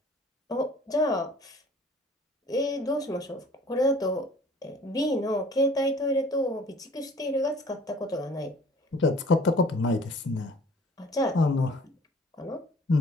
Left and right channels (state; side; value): normal; both; correlation 0.51